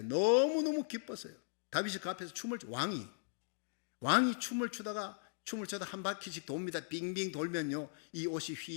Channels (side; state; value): right; silent; digital silence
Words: 너무너무 기뻤어요. 다윗이 그 앞에서 왕이 춤을 추다가 한 바퀴씩 돕니다. 빙빙 돌면요, 이 옷이